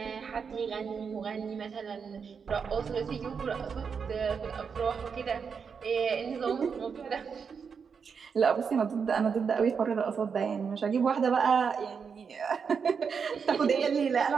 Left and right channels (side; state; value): left; quieter; 6.1 dB